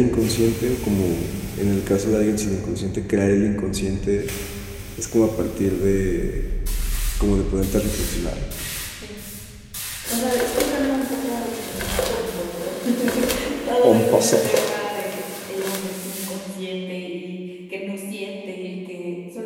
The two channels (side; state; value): both; identical; correlation 1.00